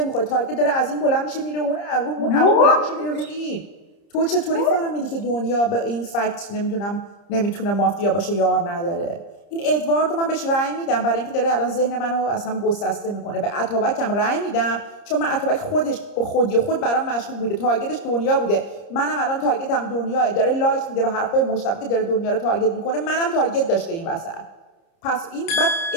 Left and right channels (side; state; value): right; late; 30 ms